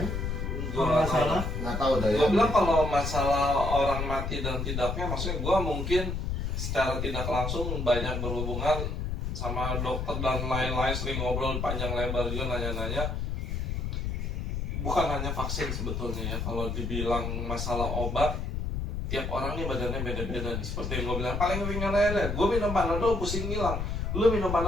Gue Kalau nggak nggak tahu. salah. Nggak tahu dah ya. Gue bilang kalau masalah orang mati dan tidaknya, maksudnya gue mungkin secara tidak langsung banyak berhubungan sama dokter dan lain-lain, sering ngobrol panjang lebar juga nanya-nanya. Bukan hanya vaksin sebetulnya ya, kalau dibilang masalah obat, tiap orang nih badannya beda-beda nih. Seperti yang gue bilang, paling ringan aja, gue minum Panadol pusing hilang. Lu minum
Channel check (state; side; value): noise; left; rumble, 2 dB below the sound